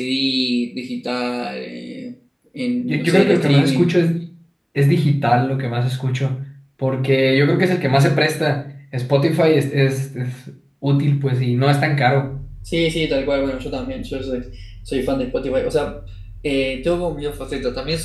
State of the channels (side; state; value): both; identical; correlation 1.00